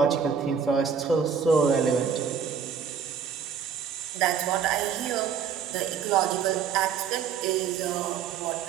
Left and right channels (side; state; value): left; quieter; 7.0 dB